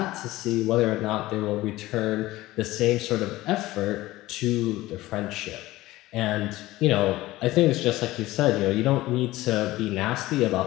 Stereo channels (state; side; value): quieter; right; 17.6 dB